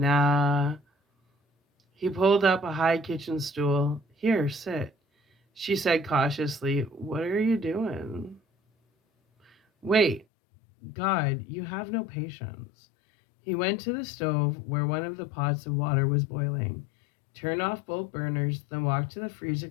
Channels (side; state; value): right; drops out; at 10.2 s